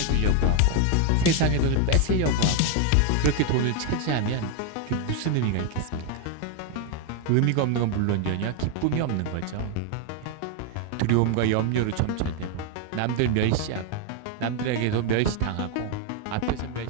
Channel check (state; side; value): different; both; correlation 0.01